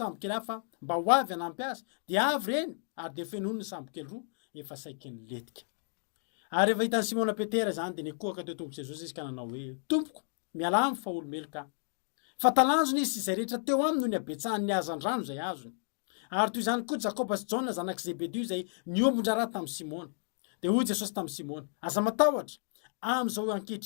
hafa mba ho avy hanampy azy de avy reny ary de fenoiny ny sambokely roa efa saiky ny letika. Ary rehefa hitan'ny Simona Petera zany de nikohaka teo tomboky Jesosy izy ka nanao hoe tompoko mialamy fa olomelo ka. Fa talanjony izy izay rehetra teo aminy no ny abetsahany ny azandrano zay azony. Ary toy izany koa Jakoba sy Jona zanak' Zebedeo zay niombondra raha tamin'ny Simona. De hoy Jesosy tamin'ny Simona, aza matahotra amin'izao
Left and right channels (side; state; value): right; silent; digital silence